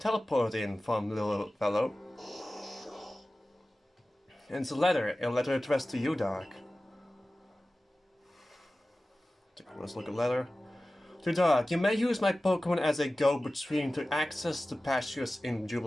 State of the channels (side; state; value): both; normal; correlation 0.96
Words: in from, little fellow? And it's a letter addressed to you, Dark. Let's look at letter. To Dark, you may use my Pokemon as a go-between to access the pastures in